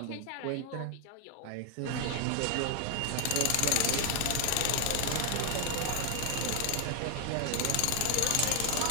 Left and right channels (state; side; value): different; both; correlation 0.00